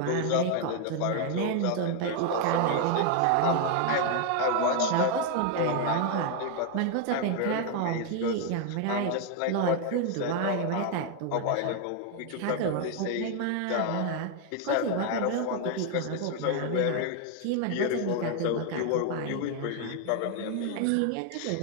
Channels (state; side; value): different; both; correlation 0.00